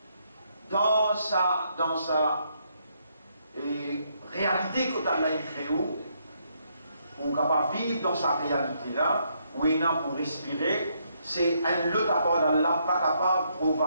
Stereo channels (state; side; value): inverted; both; correlation -0.74